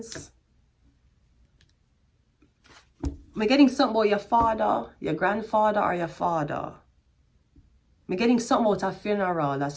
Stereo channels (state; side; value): identical; both; correlation 1.00